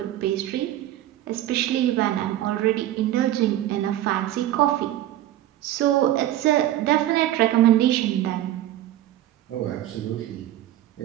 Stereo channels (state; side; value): quieter; left; 13.6 dB